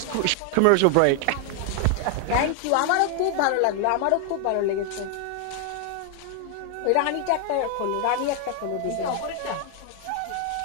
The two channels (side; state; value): both; different; correlation 0.00